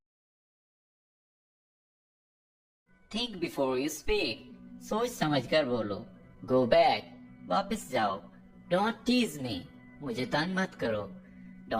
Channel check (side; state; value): both; identical; correlation 1.00